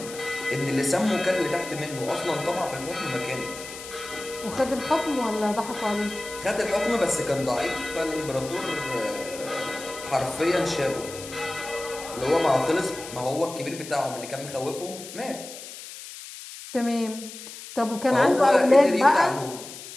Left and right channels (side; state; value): left; noise; hiss, 13 dB below the sound